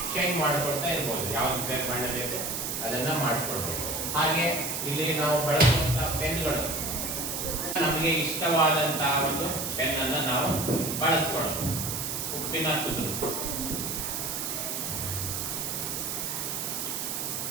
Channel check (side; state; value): right; noise; hiss, 3 dB below the sound